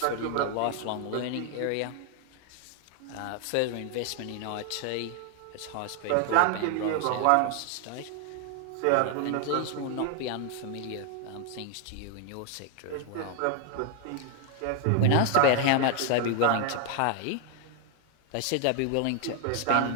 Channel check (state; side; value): different; both; correlation 0.00